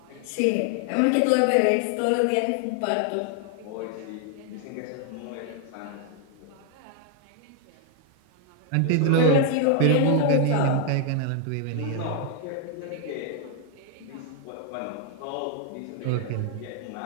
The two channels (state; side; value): different; both; correlation 0.00